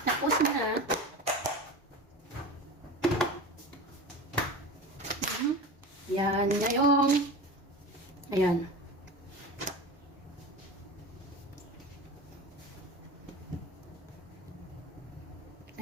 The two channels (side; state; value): both; normal; correlation 0.31